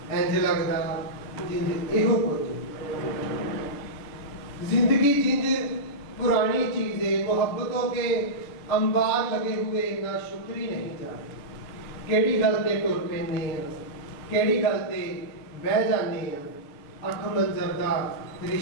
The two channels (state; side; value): late; right; 6.7 ms